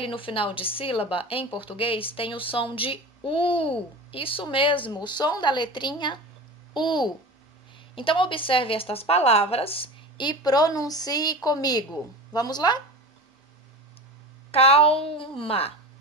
no final de sílaba, em português, tem o som de U. Isso mesmo, o som da letrinha U. Então, observe estas palavras e pronuncie comigo. Vamos lá? Calma,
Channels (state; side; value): normal; both; correlation 0.31